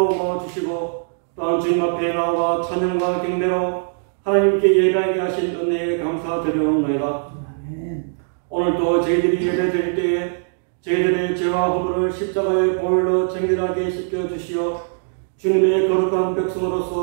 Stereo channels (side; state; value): left; silent; digital silence